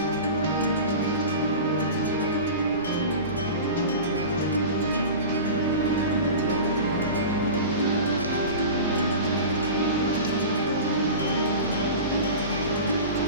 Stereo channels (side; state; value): both; inverted; correlation -0.33